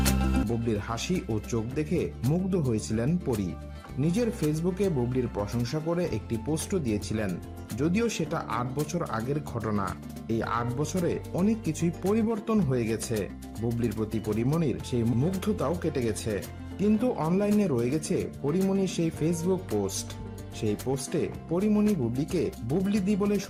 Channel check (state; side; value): identical; both; correlation 1.00